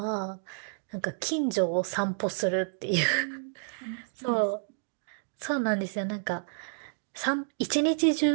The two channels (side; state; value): left; silent; digital silence